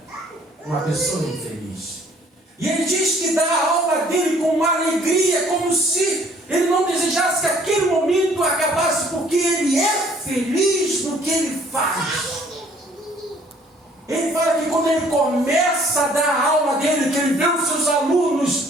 uma pessoa infeliz. E ele diz que dá a alma dele com uma alegria, como se ele não desejasse que aquele momento acabasse, porque ele é feliz no que ele faz. Ele fala que quando ele começa a dar a alma dele, que ele vê os seus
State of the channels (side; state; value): both; normal; correlation 0.59